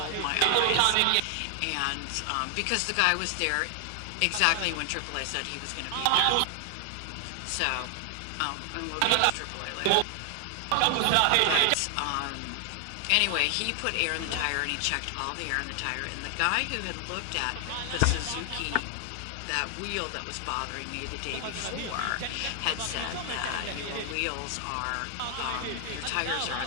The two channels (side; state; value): both; different; correlation 0.00